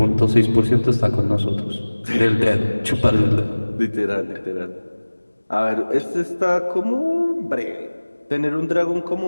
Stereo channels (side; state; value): both; inverted; correlation -1.00